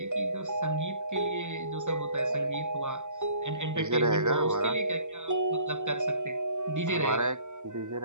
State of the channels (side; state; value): left; late; 0.84 ms